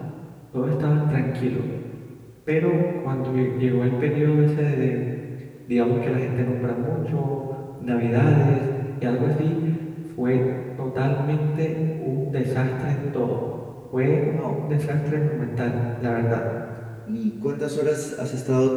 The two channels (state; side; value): identical; both; correlation 1.00